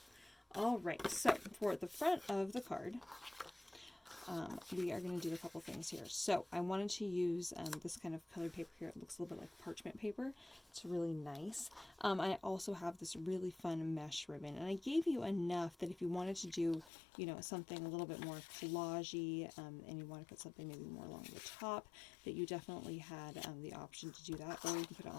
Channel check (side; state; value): right; drops out; at 16.9 s